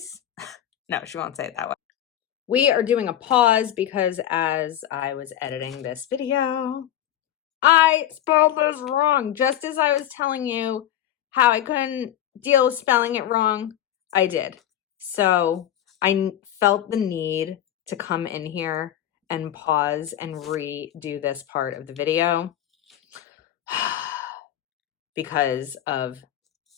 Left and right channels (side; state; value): right; quieter; 11.6 dB